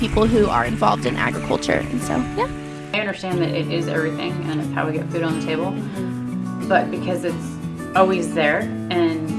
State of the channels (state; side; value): identical; both; correlation 1.00